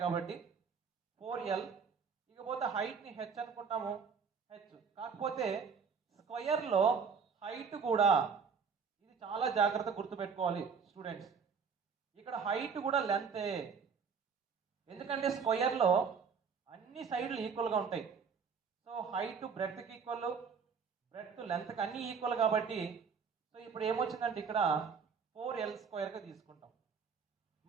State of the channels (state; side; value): quieter; left; 6.0 dB